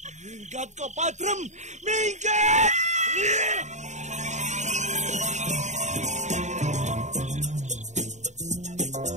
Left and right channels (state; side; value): late; left; 0.34 ms